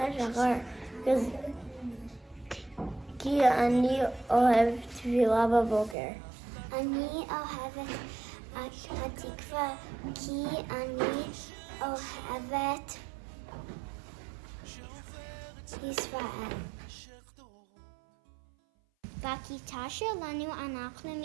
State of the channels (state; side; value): drops out; left; at 6.0 s